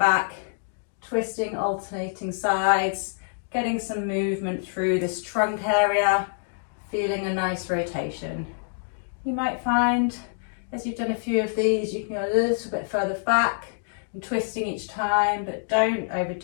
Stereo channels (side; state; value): right; silent; digital silence